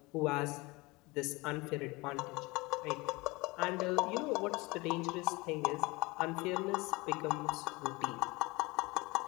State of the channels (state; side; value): quieter; right; 23.9 dB